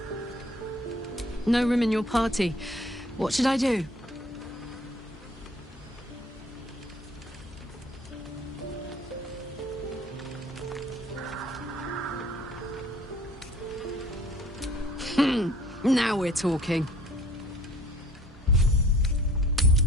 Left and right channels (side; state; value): both; normal; correlation 0.53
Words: No room in your party. What should I do? Now we're talking.